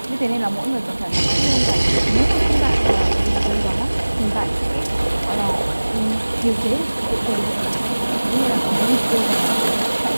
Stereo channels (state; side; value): inverted; both; correlation -1.00